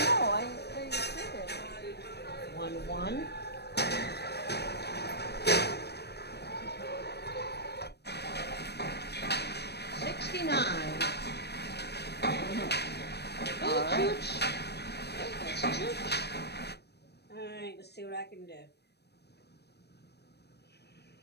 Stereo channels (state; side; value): late; right; 0.48 ms